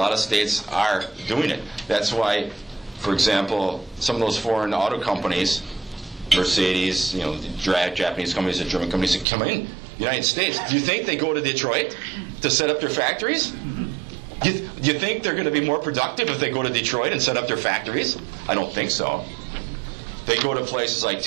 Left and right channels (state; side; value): drops out; left; at 9.2 s